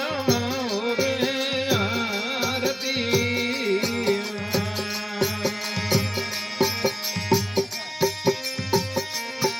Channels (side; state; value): both; identical; correlation 1.00